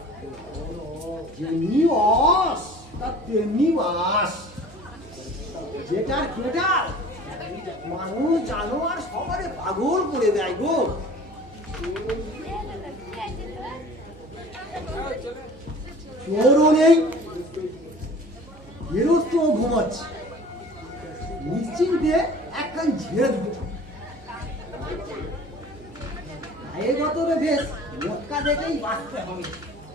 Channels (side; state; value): right; noise; hum, 21 dB below the sound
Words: যেমনি অস তার তেমনি বাস। যেটার কেডাল মানুষ জানোয়ার সবারে পাগল করে দেয় গো। চোরও নেই, গেরস্ত ঘুমাচ্ছে, নিশ্চিন্তে একখান ঝেড়ে দিতে গায়ে গতরে বেশ মটকা দেখেই বাঁচতে হবে।